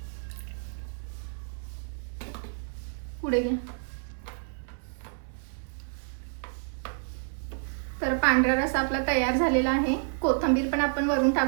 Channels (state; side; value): silent; left; 58 dB below the other